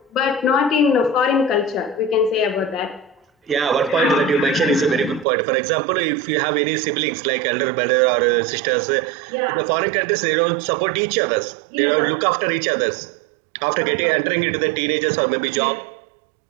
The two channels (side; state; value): left; drops out; at 5.2 s